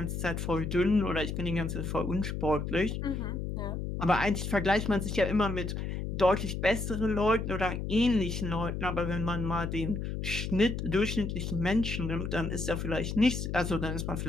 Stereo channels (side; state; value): left; noise; hum, 3 dB below the sound